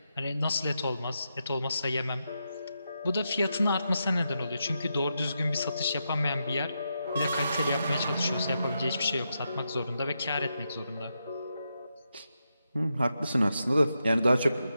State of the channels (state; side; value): inverted; both; correlation -0.85